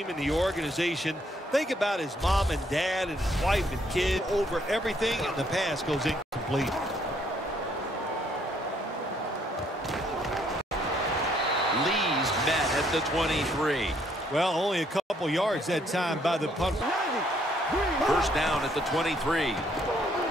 and the organization. Think about his mom and dad and his wife and kid over everything, and the pass goes incomplete. Lee's met at the 23. Well, only a couple yards that time by the punt. First down at the 23.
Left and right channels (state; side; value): normal; both; correlation 0.68